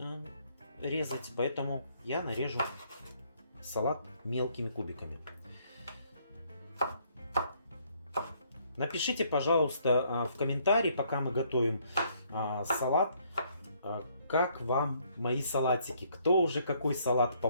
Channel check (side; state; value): both; inverted; correlation -0.67